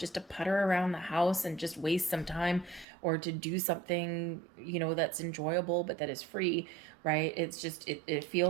to putter around the house and just waste some time, or to do something, that's enjoyable, but that is free, right? It's just, it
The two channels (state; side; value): drops out; left; at 2.9 s